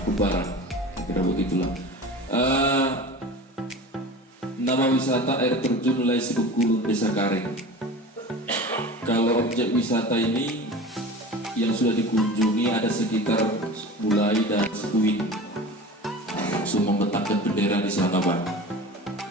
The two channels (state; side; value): normal; both; correlation 0.35